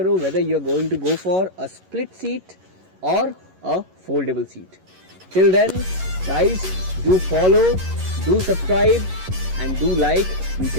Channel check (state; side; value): late; left; 11 ms